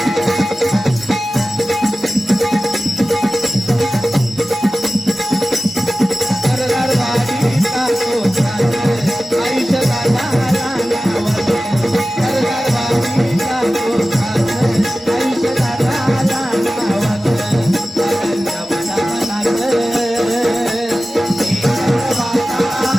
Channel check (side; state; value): both; normal; correlation 0.95